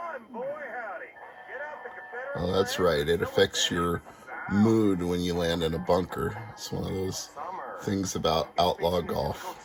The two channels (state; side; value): identical; both; correlation 1.00